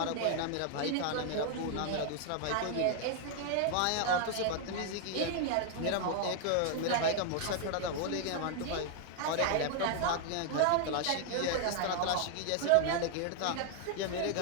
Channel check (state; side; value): different; both; correlation 0.00